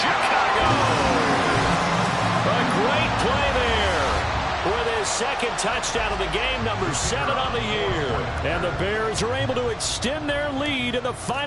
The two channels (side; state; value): both; identical; correlation 1.00